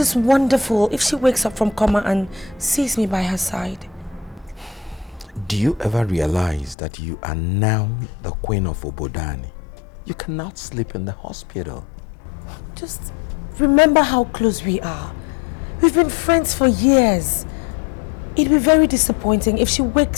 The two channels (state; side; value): drops out; right; at 6.8 s